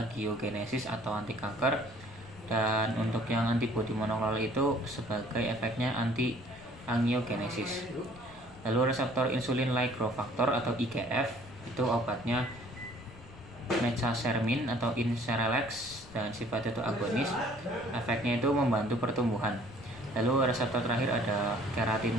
atau anti kanker, dan untuk yang antibodi monoklonal itu sebagai efeknya anti angiogenesis. Lalu reseptor insulin like growth factor atau IGF itu obatnya mesasermin atau Inceralex dan sifatnya itu agonis. Efeknya itu membantu pertumbuhan. Lalu reseptor terakhir ada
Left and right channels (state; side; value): noise; left; rumble, 19 dB below the sound